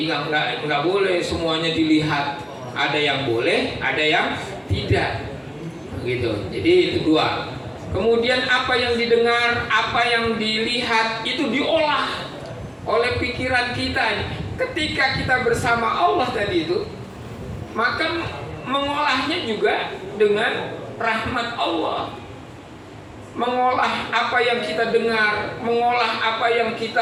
nggak boleh semuanya dilihat. Ada yang boleh, ada yang tidak. Begitu. Jadi itu dua. Kemudian apa yang didengar, apa yang dilihat itu diolah oleh pikiran kita. Ketika kita bersama Allah tadi itu, maka mengolahnya juga dengan rahmat Allah. Mengolah apa yang kita dengar, mengolah apa yang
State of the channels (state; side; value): identical; both; correlation 1.00